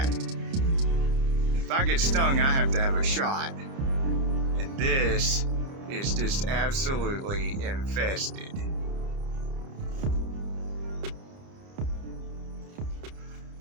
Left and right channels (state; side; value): late; left; 30 ms